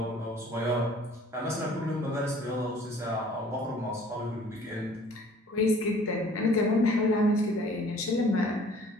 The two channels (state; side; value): normal; both; correlation 0.52